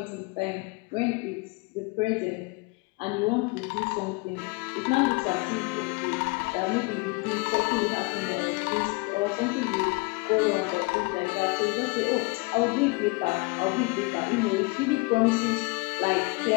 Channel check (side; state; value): right; quieter; 27.0 dB